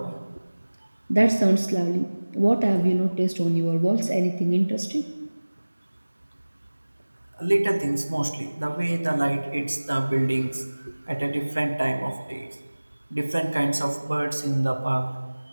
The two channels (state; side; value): inverted; both; correlation -1.00